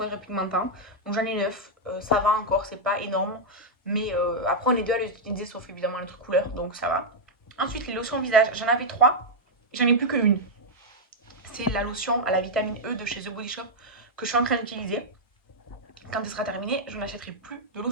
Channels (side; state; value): both; normal; correlation -0.04